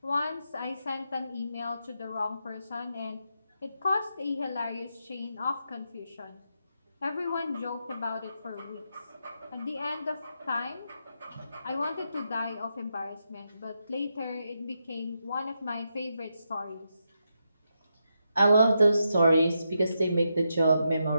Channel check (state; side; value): inverted; both; correlation -0.84